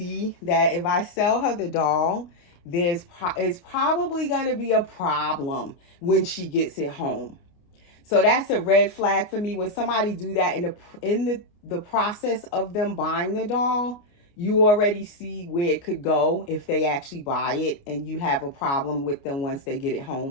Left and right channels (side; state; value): right; late; 29 ms